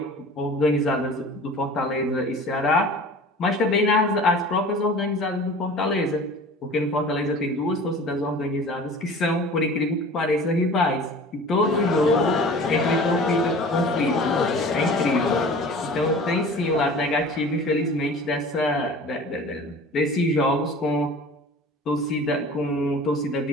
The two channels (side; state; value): both; normal; correlation 0.42